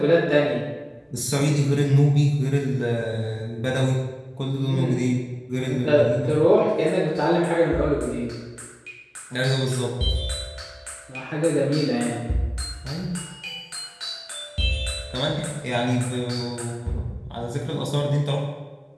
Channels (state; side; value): identical; both; correlation 1.00